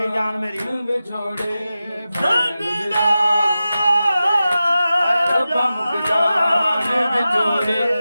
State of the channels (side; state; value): both; inverted; correlation -0.93